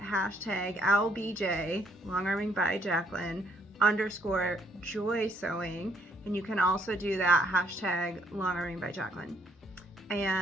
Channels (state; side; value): normal; both; correlation 0.69